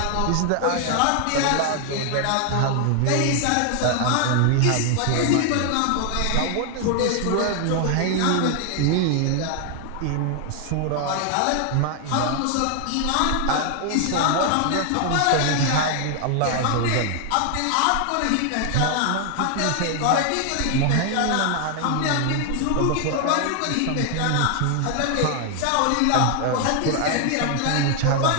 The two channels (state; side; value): different; both; correlation 0.00